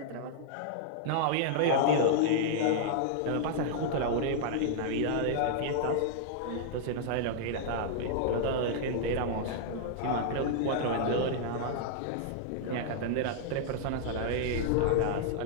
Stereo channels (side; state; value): both; different; correlation -0.01